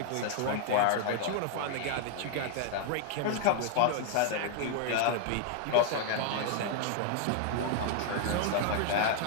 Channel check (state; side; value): different; both; correlation 0.00